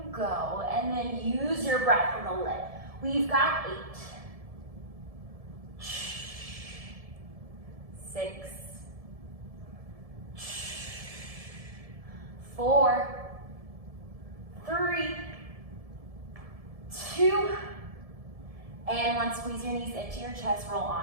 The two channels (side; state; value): left; late; 1.7 ms